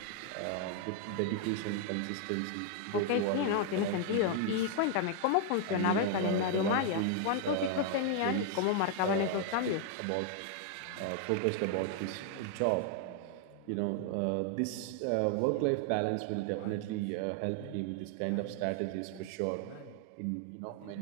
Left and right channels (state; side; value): different; both; correlation 0.00